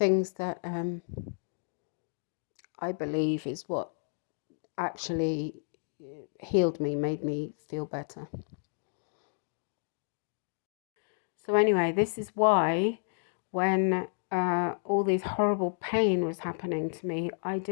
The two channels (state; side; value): silent; right; digital silence